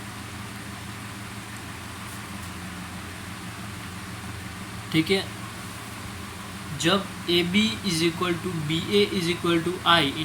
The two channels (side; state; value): both; identical; correlation 1.00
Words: ठीक है, जब A B is equal to B A is equal to I,